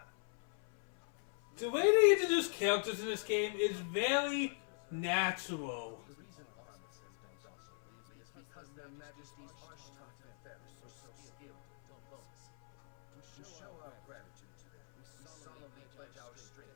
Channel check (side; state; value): right; silent; 51 dB below the other